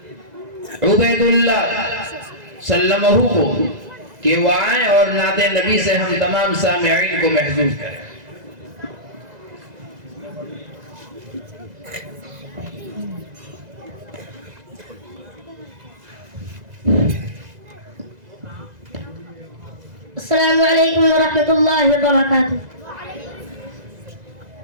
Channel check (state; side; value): late; left; 2.0 ms